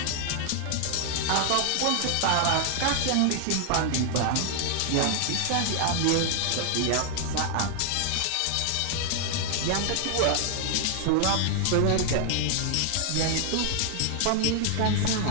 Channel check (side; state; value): both; different; correlation 0.00